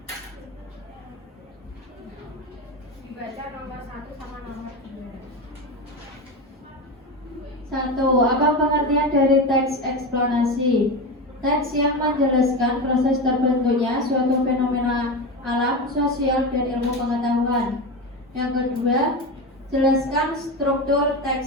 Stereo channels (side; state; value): both; normal; correlation 0.21